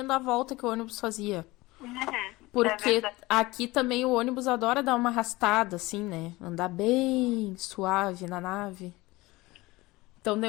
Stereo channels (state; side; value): quieter; right; 20.6 dB